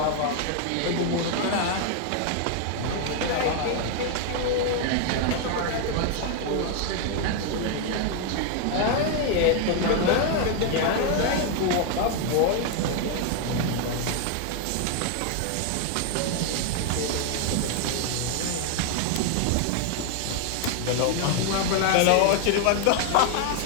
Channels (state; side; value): different; both; correlation 0.00